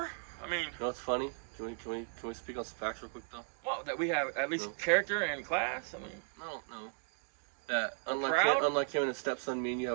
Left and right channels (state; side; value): silent; left; 54 dB below the other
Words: I mean, you know what's funny? Can we speak on some facts real quick though? Well, that we have at least character and class. I mean, no. That unlike him and his stepson, me and you